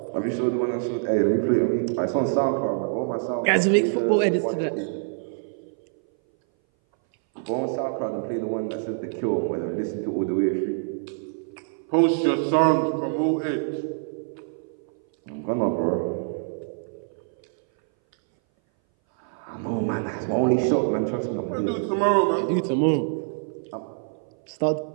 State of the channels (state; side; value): silent; left; 59 dB below the other